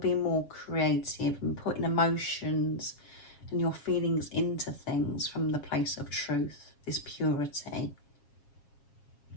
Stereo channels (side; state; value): right; late; 7.4 ms